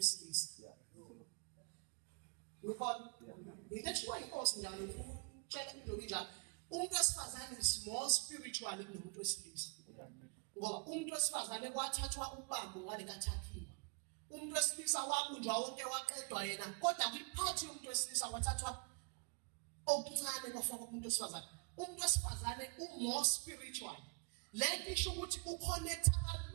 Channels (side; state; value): left; quieter; 35.2 dB